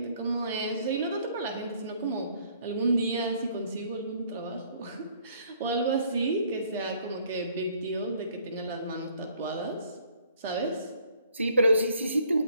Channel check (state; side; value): inverted; both; correlation -0.61